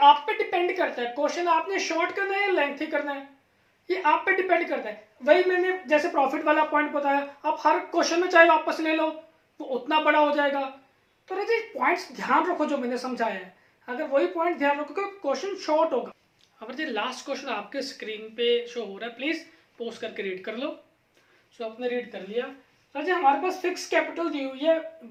आप पे डिपेंड करता है क्वेश्चन आपने शॉर्ट करना है या लेंथी करना है, ये आप पे डिपेंड करता है। वही मैंने जैसे प्रॉफिट वाला पॉइंट बताया, आप हर क्वेश्चन में चाहे वापस ले लो वो उतना बड़ा हो जाएगा। तो राजे पॉइंट्स ध्यान रखो जो मैंने समझाया है, अगर वही पॉइंट ध्यान रखोगे क्वेश्चन शॉर्ट होगा। अब जी लास्ट क्वेश्चन आपके स्क्रीन पे शो हो रहा है, प्लीज पोस्ट करके रीड कर लो। सो आपने रीड कर लिया। राजे हमारे पास फिक्स कैपिटल दी हुई है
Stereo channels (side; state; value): both; identical; correlation 1.00